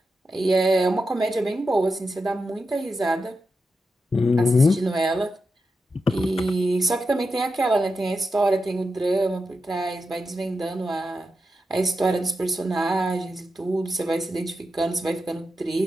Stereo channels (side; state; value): both; normal; correlation 0.88